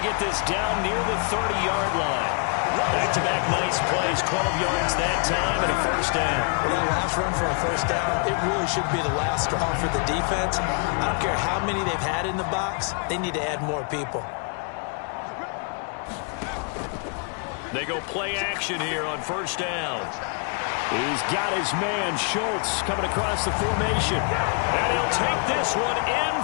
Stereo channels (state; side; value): quieter; right; 39.9 dB